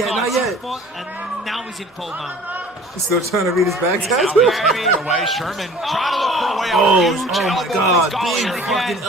now he's in full mount. He's still trying to read his back tattoo. Away. Sherman trying to look for a way out. Oh my God. Big fucking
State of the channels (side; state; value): both; normal; correlation 0.47